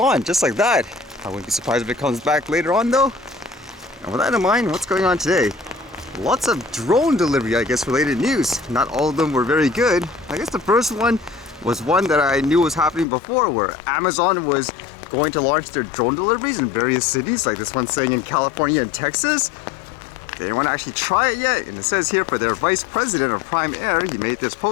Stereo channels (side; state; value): right; drops out; at 13.1 s